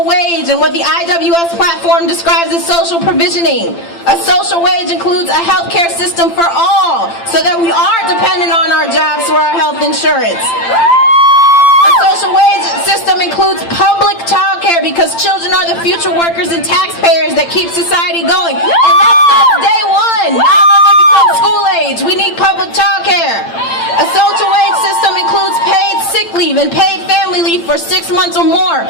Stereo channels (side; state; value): right; late; 8.8 ms